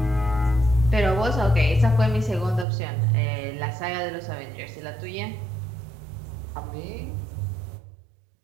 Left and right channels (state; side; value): drops out; left; at 2.7 s